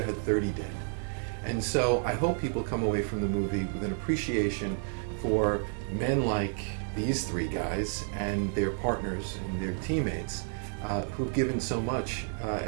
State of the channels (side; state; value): left; silent; 57 dB below the other